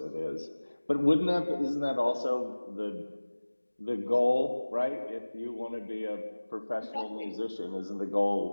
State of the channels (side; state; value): both; inverted; correlation -1.00